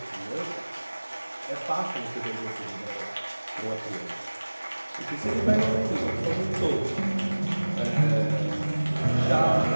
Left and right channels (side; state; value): both; inverted; correlation -1.00